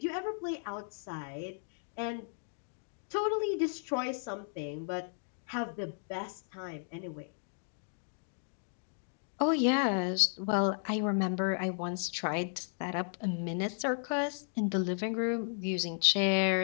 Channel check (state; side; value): silent; right; digital silence